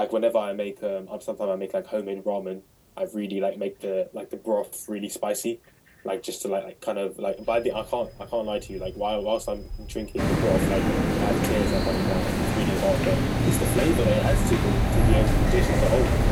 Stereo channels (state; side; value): identical; both; correlation 1.00